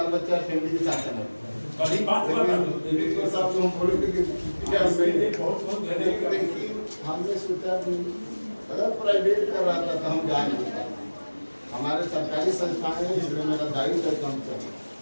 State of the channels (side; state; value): both; inverted; correlation -1.00